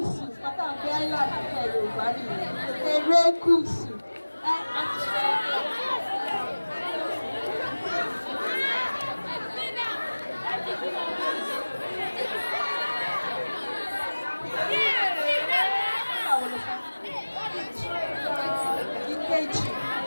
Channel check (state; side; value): inverted; both; correlation -1.00